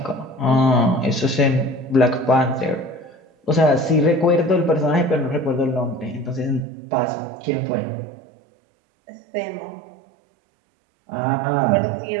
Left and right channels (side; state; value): left; drops out; at 6.7 s